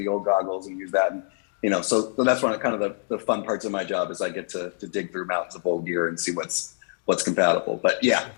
old goggles and use that. And, so that's one of kind of the fun parts of my job is I get to dig through mountains of old gear and see what's compatible. But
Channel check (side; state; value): right; silent; digital silence